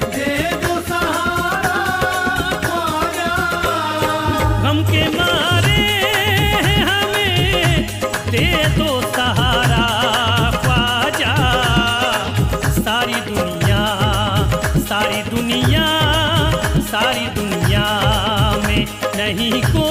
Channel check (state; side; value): identical; both; correlation 1.00